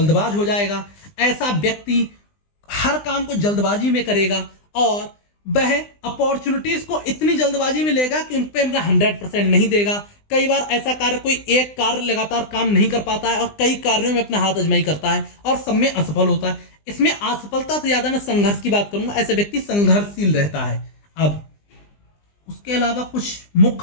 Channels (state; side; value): late; right; 20 ms